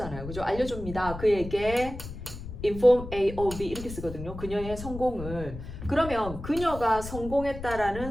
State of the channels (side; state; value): left; noise; rumble, 10 dB below the sound